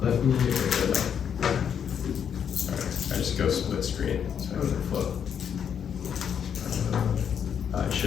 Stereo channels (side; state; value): right; quieter; 8.1 dB